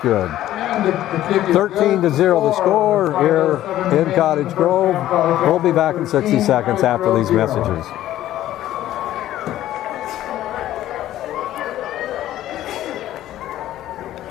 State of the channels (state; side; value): quieter; right; 13.5 dB